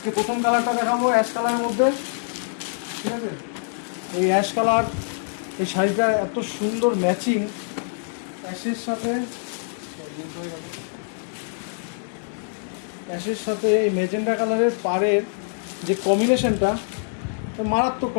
প্রথম কালারটা দেখাবো অ্যাশ কালারের মধ্যে, ঠিক আছে? এই অ্যাশ কালার, এই শাড়িটা এত সুন্দর ম্যাচিং অ্যাশের সাথে এই মেজেন্ডা কালারের পাড়ের যে কম্বিনেশনটা, মারাত্মক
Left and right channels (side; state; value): right; silent; digital silence